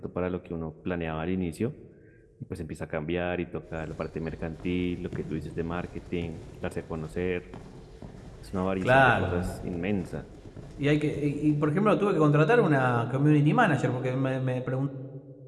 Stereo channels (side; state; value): both; identical; correlation 1.00